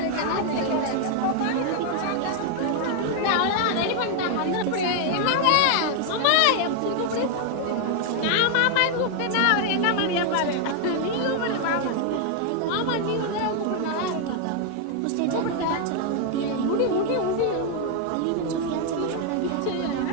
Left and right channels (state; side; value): different; both; correlation 0.00